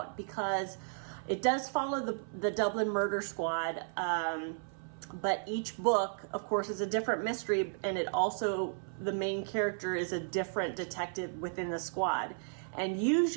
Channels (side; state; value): left; silent; 55 dB below the other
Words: because It does follow the Dublin Murder Squad, but each book, of course, is a different mystery, and it also, the main character is a different detective within the squad. And